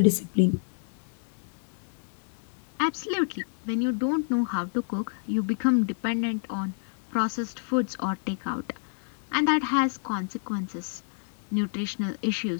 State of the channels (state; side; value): silent; right; 59 dB below the other